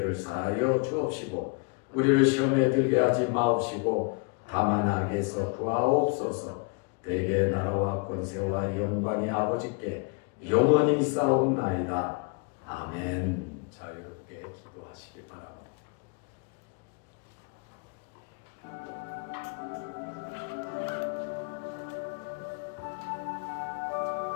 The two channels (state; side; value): quieter; right; 33.2 dB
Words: 사하여 주옵시고 우리를 시험에 들게 하지 마옵시고 다만 악에서 구하옵소서. 대개 나라와 권세와 영광이 아버지께 영원히 있사옵나이다. 아멘. 자유롭게 기도하시기 바랍니다.